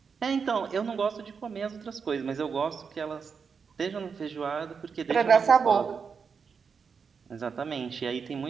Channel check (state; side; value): quieter; left; 5.9 dB